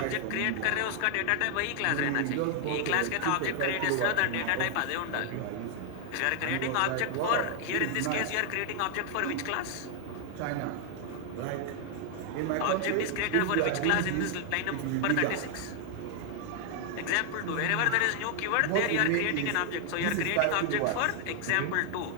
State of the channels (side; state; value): both; different; correlation 0.00